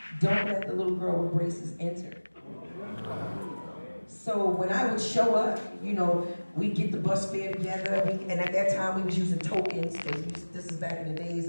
don't let the little girl with braces enter. So when I would show up, we'd get the bus fare together, and at that time we was using tokens, because this is back in the days,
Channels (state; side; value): inverted; both; correlation -1.00